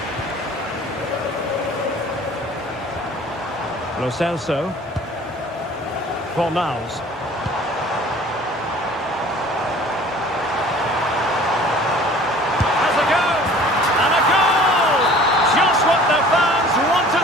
Lo Celso. Fornals. Has a go! And a goal! Just what the fans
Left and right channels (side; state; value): both; normal; correlation 0.48